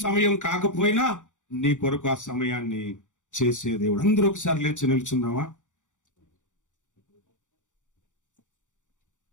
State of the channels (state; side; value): late; right; 0.86 ms